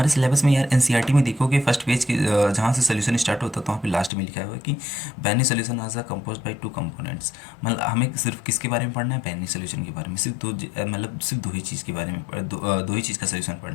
सिलेबस में यार एनसीईआरटी में देखोगे फर्स्ट पेज के जहाँ से सोल्यूशन स्टार्ट होता है तो वहाँ पे लास्ट में लिखा हुआ है कि binary solution are compose by two components. मतलब हमें सिर्फ किसके बारे में पढ़ना है, बाइनरी सोल्यूशन के बारे में, मतलब सिर्फ दो ही चीज़ के बारे में दो ही चीज़ का सोल्यूशन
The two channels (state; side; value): drops out; right; at 4.1 s